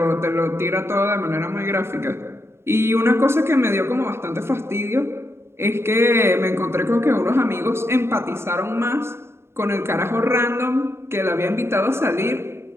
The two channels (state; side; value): late; left; 0.12 ms